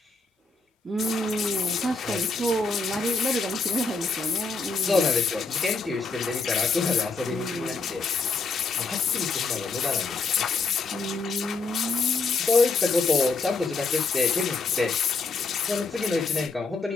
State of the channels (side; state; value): right; quieter; 4.0 dB